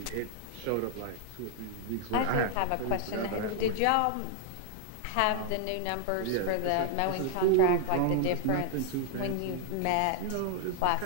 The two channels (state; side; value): different; both; correlation 0.00